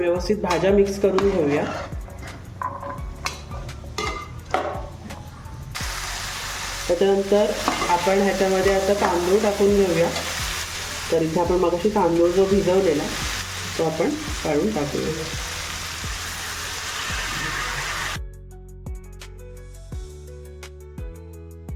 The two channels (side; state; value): both; identical; correlation 1.00